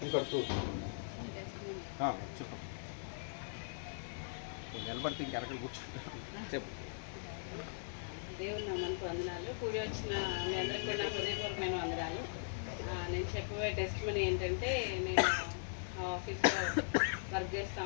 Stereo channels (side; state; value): right; silent; 51 dB below the other